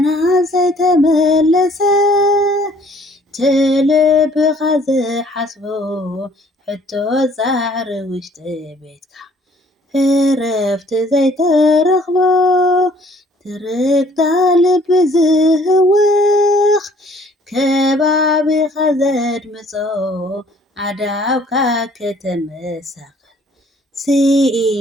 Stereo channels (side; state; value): both; normal; correlation 0.58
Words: ዘይተመለሰ ትልብኻ ዝሓስቦ ሕቶ ዛዕሪ ውሽጢ ቤትካ ዕረፍቲ ዘይተረኽቦ ትርግታ ልቢ ዝህውኽ ከባቢኻ ዘድምጾ ዓዳውካ ከተመሳቕል